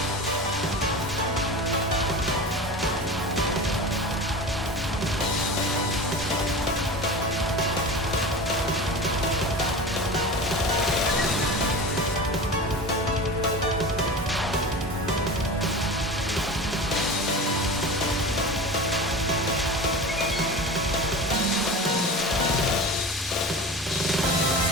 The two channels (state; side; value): normal; both; correlation 0.32